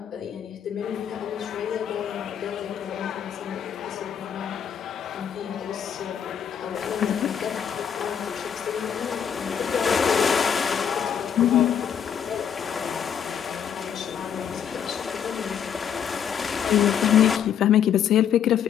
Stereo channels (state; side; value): quieter; right; 8.4 dB